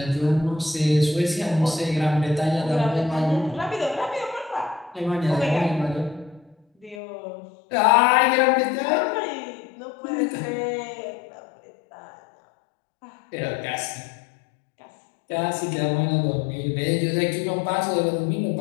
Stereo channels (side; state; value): right; drops out; at 7.0 s